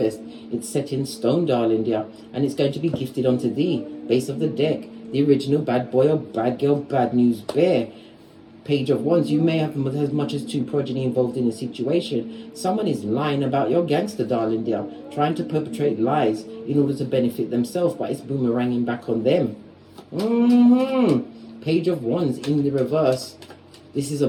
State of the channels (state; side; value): identical; both; correlation 1.00